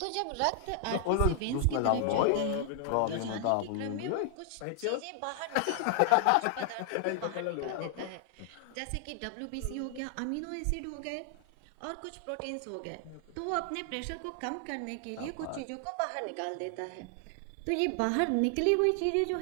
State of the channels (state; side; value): different; both; correlation 0.00